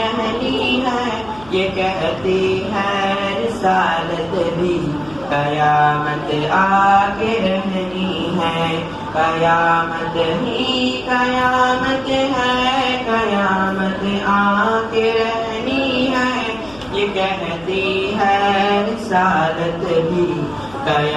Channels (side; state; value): left; noise; hum, 23 dB below the sound